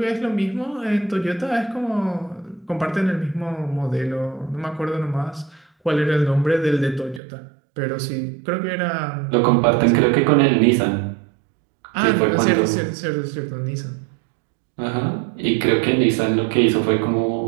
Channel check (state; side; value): drops out; left; at 7.2 s